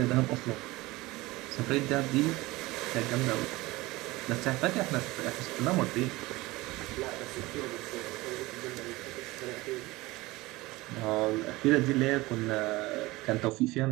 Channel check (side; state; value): left; quieter; 20.4 dB